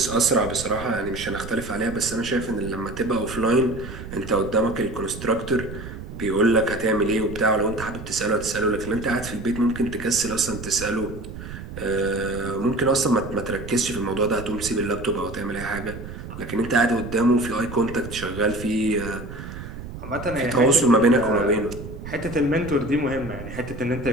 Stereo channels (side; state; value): right; noise; rumble, 11 dB below the sound